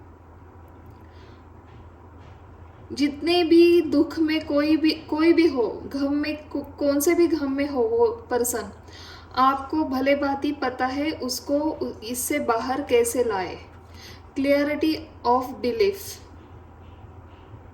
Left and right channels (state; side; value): identical; both; correlation 1.00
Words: जितने भी दुख में कोई भी हो, गम में कौन से भी गम में हो वो पर्सन, आपको भले बात ही पता है उसको इससे बाहर कैसे लाए। Clarity of belief.